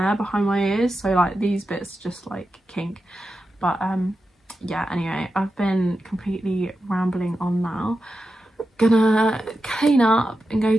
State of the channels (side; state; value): both; normal; correlation 0.90